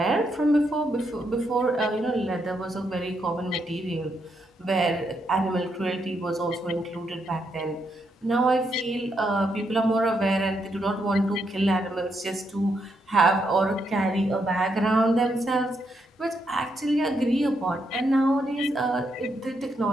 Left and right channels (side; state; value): both; normal; correlation 0.79